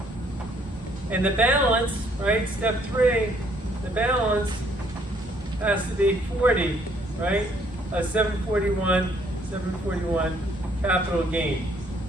And the balance, right? Step 3. The balance has to be 40, right? 741 capital gain.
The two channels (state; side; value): normal; both; correlation 0.65